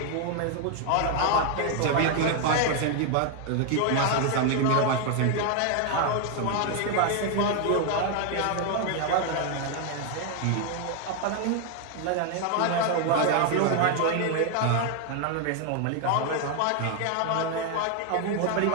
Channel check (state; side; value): different; both; correlation 0.00